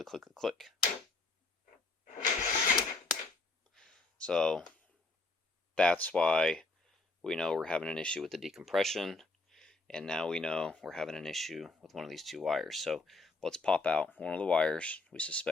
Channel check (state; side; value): quieter; right; 3.2 dB